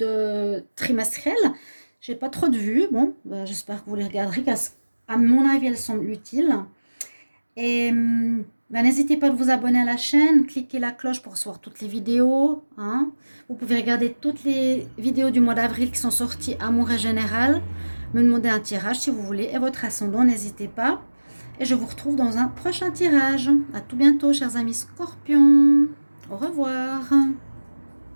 trimestrielles. J'ai pas trop de vues, bon, j'espère que vous les regarderez, car à mon avis, elles sont utiles. Et n'hésitez pas à vous abonner à la chaîne, cliquez la cloche pour recevoir toutes les vidéos. Hein. Vous pouvez regarder toutes les vidéos du mois d'avril qui sont sorties Amour et Général. Me demander un tirage si vous voulez. Et votre ascendant, n'hésitez pas. Et je vous retrouve dans un prochain tirage. À tout bientôt, chers amis Scorpions. Au revoir.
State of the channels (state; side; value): inverted; both; correlation -1.00